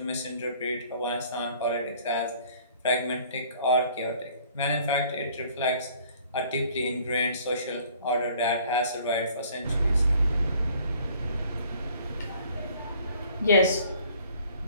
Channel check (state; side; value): inverted; both; correlation -0.55